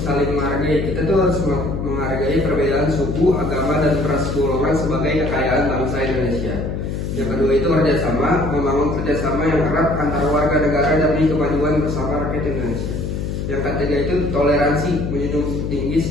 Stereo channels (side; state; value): left; noise; hum, 3 dB below the sound